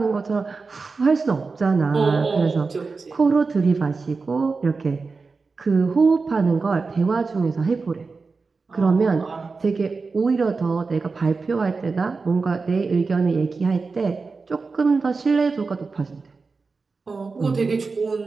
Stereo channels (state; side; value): quieter; left; 4.3 dB